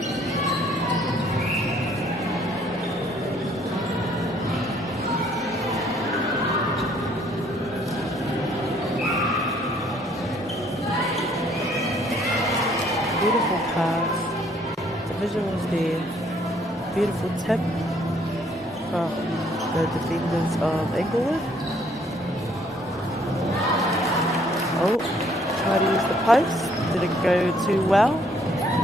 Beautiful pass. The visuals there. Beautiful tip from the defenders of Inglewood. Oh, try to use the post. Didn't go too well.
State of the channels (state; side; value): normal; both; correlation 0.64